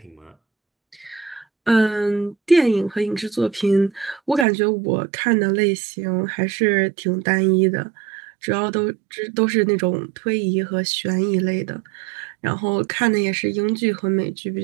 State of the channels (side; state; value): left; drops out; at 4.5 s